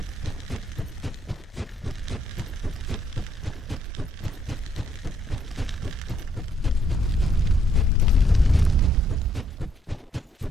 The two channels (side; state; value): both; normal; correlation 0.71